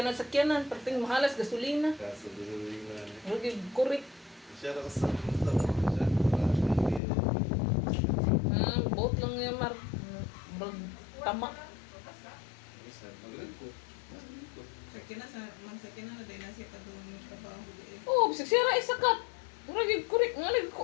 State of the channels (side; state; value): right; drops out; at 7.0 s